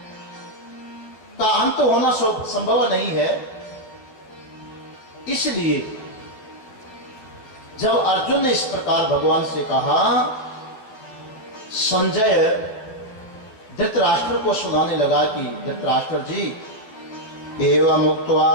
का अंत होना संभव नहीं है। इसलिए जब अर्जुन ने इस प्रकार भगवान से कहा, संजय धृतराष्ट्र को सुनाने लगा कि धृतराष्ट्र जी, एवं उक्त्वा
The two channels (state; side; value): late; right; 12 ms